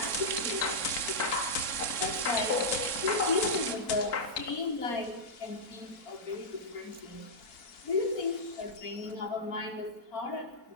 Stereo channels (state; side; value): late; right; 4.4 ms